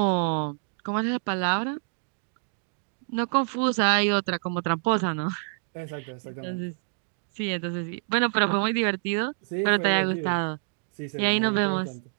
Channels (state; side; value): silent; left; digital silence